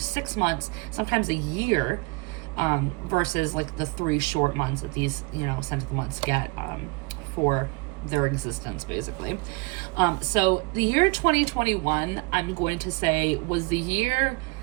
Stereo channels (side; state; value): left; quieter; 27.0 dB